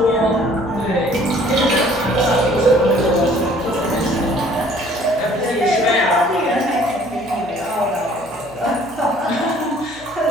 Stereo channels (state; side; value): normal; both; correlation 0.56